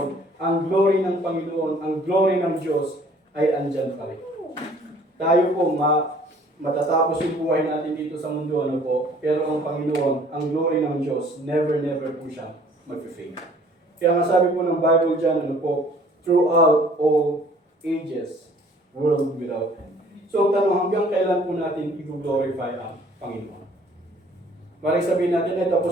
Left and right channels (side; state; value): both; normal; correlation 0.55